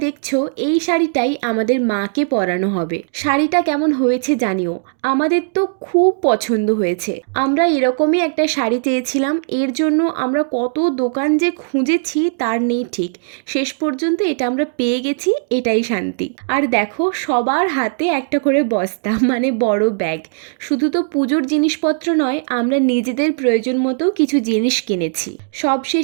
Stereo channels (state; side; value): silent; left; digital silence